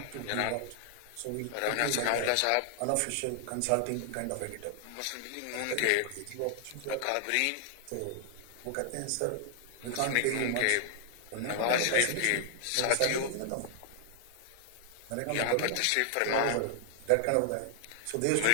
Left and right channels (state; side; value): different; both; correlation 0.00